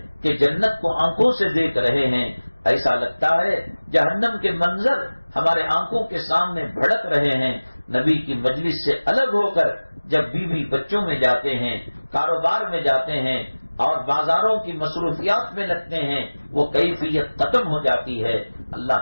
کہ جنت کو آنکھوں سے دیکھ رہے ہیں، ایسا لگتا ہے جہنم کے منظر ہمارے آنکھوں کے سامنے بھڑک رہے ہیں. نبی کی مجلس سے الگ ہو کر جب بیوی بچوں میں جاتے ہیں، کاروبار میں جاتے ہیں اور بازاروں کی مصروفیات میں لگتے ہیں، وہ کیفیت ختم ہو جاتی ہے.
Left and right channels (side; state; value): both; inverted; correlation -1.00